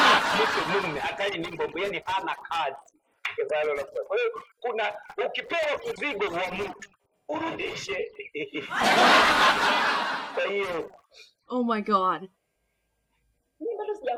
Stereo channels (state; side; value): identical; both; correlation 1.00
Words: Mungu hatari ni mbombo, yani hana kazi. Kwa hiyo kuna ukipewa mzigo wa mtu urudishe. Kwa hiyo oh my God. Mimi bado